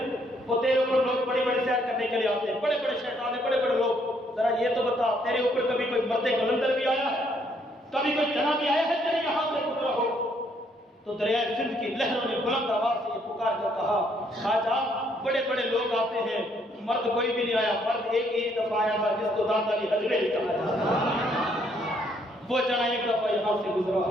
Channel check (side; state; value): both; normal; correlation 0.69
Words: وہ تیرے اوپر لوگ بڑی بڑی سیر کرنے کے لیے آتے ہیں، بڑے بڑے شہزادے، بڑے بڑے لوگ، ذرا یہ تو بتا تیرے اوپر کبھی کوئی مرد قلندر بھی آیا ہے؟ کبھی کوئی جنا بھی آیا ہے تیرے یہاں سے گزرا ہو؟ تو دریائے سندھ کی لہروں نے بلند آواز سے یہ پکار کر کہا، خواجہ بڑے بڑے لوگ آتے ہیں، مرد کوئی بھی نہیں آیا، مرد ایک ہی دفعہ آیا تھا جس کو دانت علی حجویری کہا جاتا ہے، وہ جنا ایک دفعہ یہاں سے گزرا